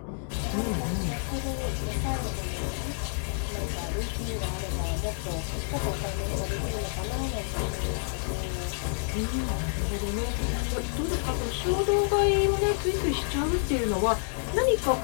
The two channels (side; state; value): right; silent; digital silence